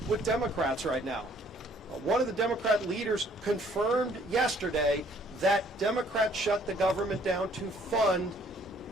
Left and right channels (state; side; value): normal; both; correlation 0.60